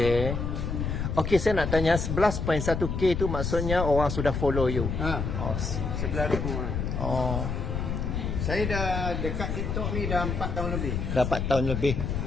Okey, saya nak tanya 11.1K tu maksudnya orang sudah follow you. Oh. 11,000. Oh. Saya dah dekat TikTok ni dah 4 tahun lebih. Dapat tahun lebih.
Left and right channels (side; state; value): left; noise; rumble, 2 dB below the sound